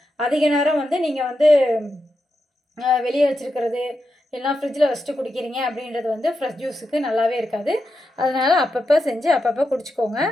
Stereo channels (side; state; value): both; normal; correlation 0.87